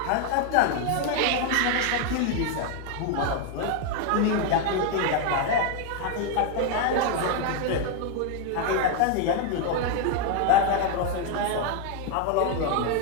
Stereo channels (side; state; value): both; different; correlation 0.01